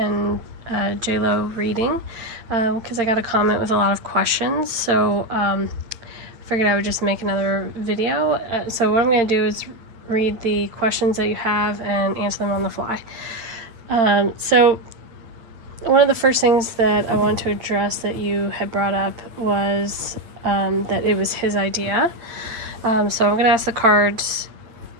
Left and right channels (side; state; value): left; late; 8.8 ms